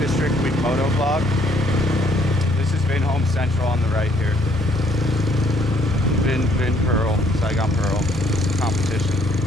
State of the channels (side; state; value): both; normal; correlation 0.65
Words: we've moto vlogged. This is Vinhome Central on the right here. Vin Pearl, Saigon Pearl competition.